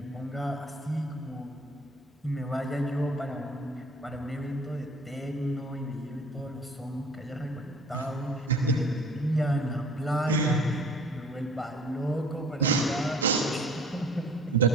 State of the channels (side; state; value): both; normal; correlation 0.50